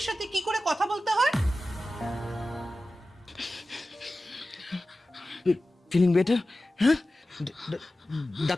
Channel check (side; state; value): both; normal; correlation 0.95